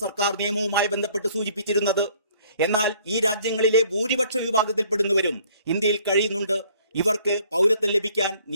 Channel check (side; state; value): both; inverted; correlation -0.59